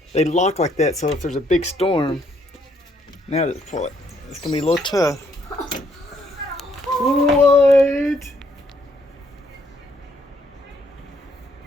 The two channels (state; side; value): normal; both; correlation 0.70